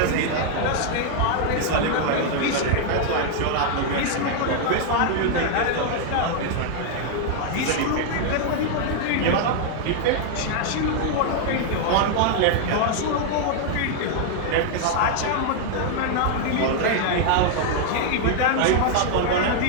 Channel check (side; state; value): both; different; correlation 0.00